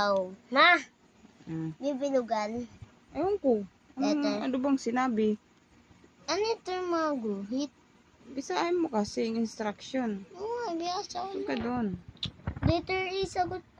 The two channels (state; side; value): identical; both; correlation 1.00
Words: Bibilugan. Ewan ko. Ano bang sinabi? Ano ito yung mga guhit? Bisahin mo kasi yung instruction. Oo, biyasa ko Saan ka doon? Letter A sagot